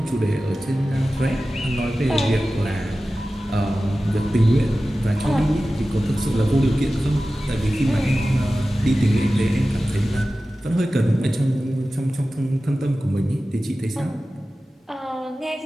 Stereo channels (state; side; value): normal; both; correlation 0.95